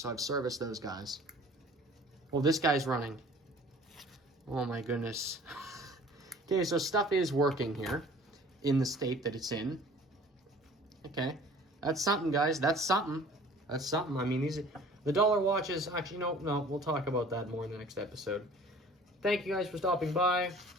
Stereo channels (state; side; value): normal; both; correlation 0.48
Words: I've serviced those guys. Well, this guy's running. Oh my goodness. Okay, so stuff is working here in the state that it's in. Okay. That's something, guys. That's something. That's something. I mean, the dollar watches. Actually, no. We'll talk about that more in the next episode. Thank you guys for stopping by.